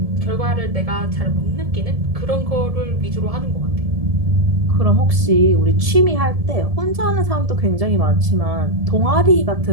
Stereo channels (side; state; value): left; late; 1.7 ms